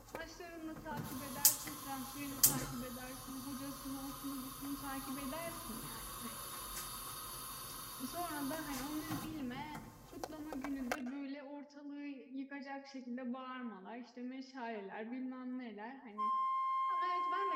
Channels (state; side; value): identical; both; correlation 1.00